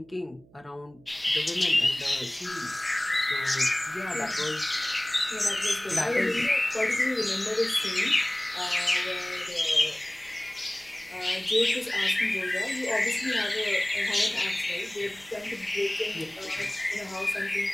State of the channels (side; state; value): right; noise; hum, 27 dB below the sound